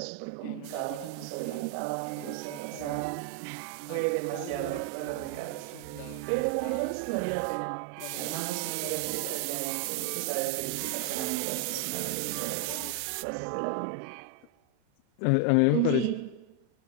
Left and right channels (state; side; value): different; both; correlation 0.00